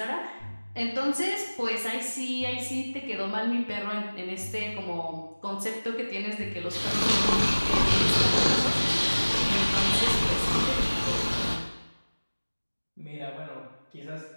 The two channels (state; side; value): inverted; both; correlation -1.00